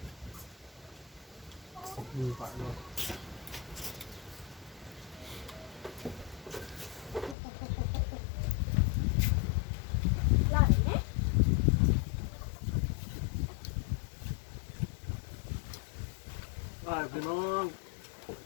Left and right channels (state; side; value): drops out; right; at 7.4 s